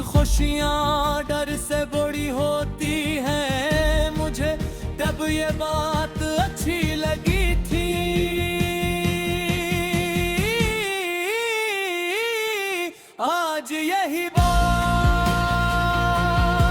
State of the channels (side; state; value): both; identical; correlation 1.00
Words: खुशियाँ डर से बड़ी होती हैं, मुझे तब ये बात अच्छी लगी थी। आज यही बात